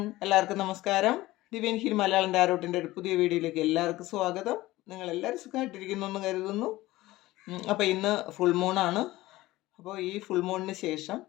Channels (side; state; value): right; quieter; 17.8 dB